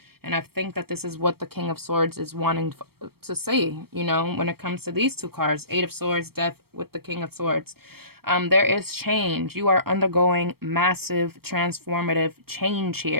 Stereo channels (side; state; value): left; late; 0.95 ms